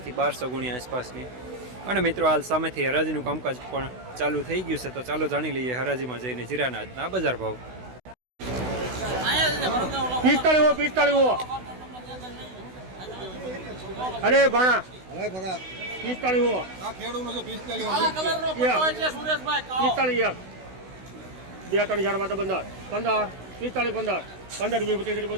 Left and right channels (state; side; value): late; left; 16 ms